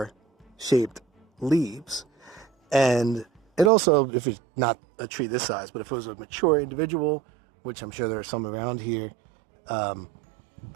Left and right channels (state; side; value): drops out; left; at 3.7 s